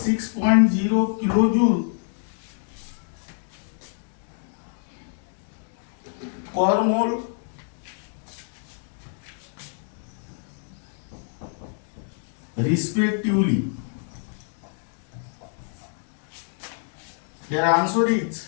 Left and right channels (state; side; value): silent; right; digital silence